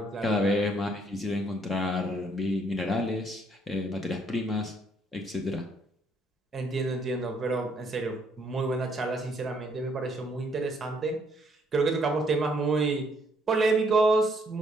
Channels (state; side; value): normal; both; correlation 0.68